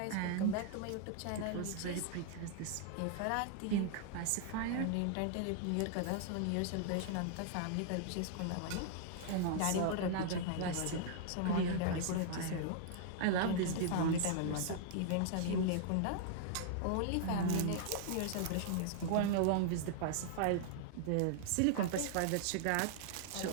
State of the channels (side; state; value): both; different; correlation -0.01